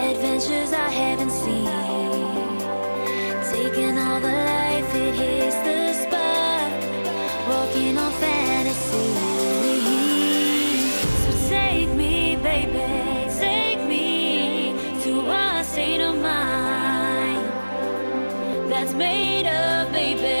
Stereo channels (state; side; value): inverted; both; correlation -1.00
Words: I haven't seen. Taking all the life, it hits the spot. Walking on fantasy. So take me, baby, take me to a state of mind that's made of,